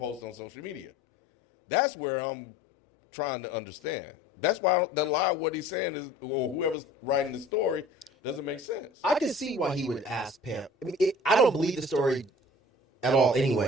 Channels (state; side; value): normal; both; correlation 0.46